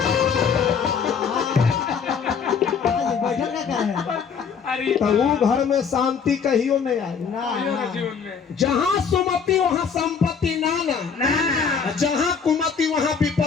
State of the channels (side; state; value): right; quieter; 6.3 dB